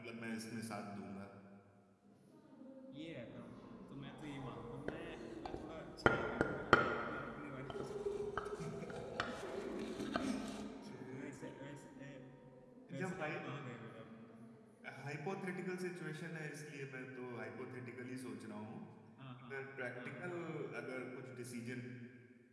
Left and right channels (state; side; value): identical; both; correlation 1.00